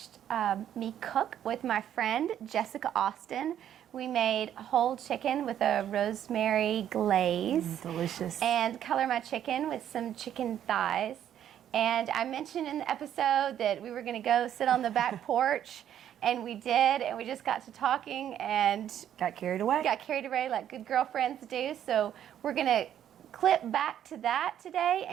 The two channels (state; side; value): quieter; left; 10.4 dB